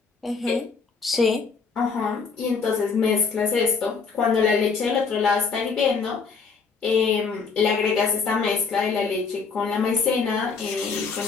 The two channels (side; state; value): right; quieter; 5.2 dB